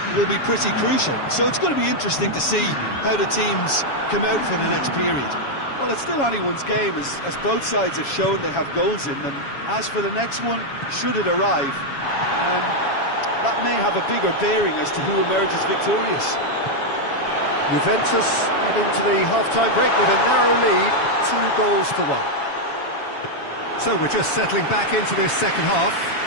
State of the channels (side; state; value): right; late; 7.2 ms